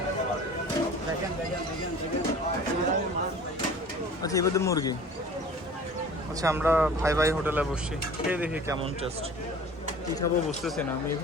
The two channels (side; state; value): both; normal; correlation 0.44